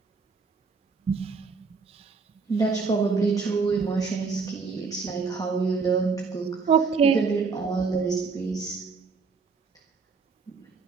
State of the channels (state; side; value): quieter; left; 4.9 dB